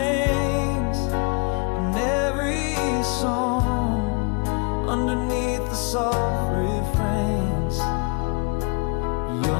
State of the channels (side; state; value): right; quieter; 32.5 dB